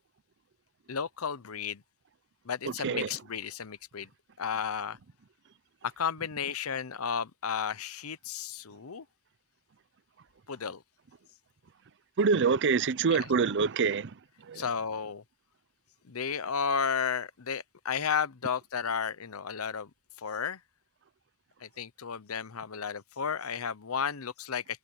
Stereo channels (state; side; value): normal; both; correlation -0.16